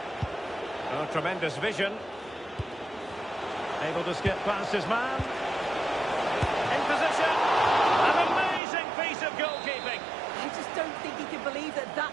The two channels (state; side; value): drops out; left; at 8.6 s